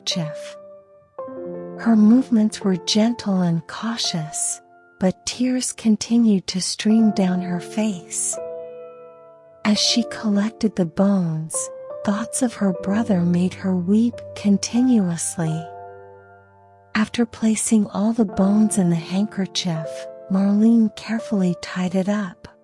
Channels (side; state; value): both; identical; correlation 1.00